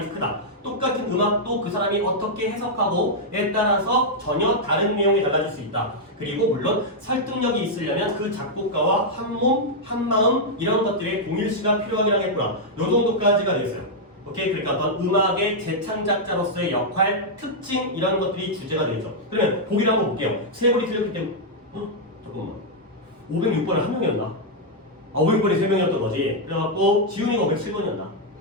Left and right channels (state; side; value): normal; both; correlation -0.04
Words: 크다. 똑같은 음악도 그 사람이 어떻게 해석하고에 따라서 전혀 다른 내용이 달라질 수 있다. 그리고 물론 설득력이 있으려면 그 작곡가와 한 몸, 한 마음 이런 것들의 동일시가 필요하긴 하겠구나. 요 정도까지가 되겠어요. 오케이? 그러니까 어떤 음악의 재창작자로서의 역할, 특징 이런 것들이 주제가 되겠죠. 그러면 보기를 한번 볼게요. 세 번이 틀렸기 때문에 잠깐만 506번은 한 명이었나? 500번이 3명이었던 거지. 그래갖고 지훈이가 507번이었나?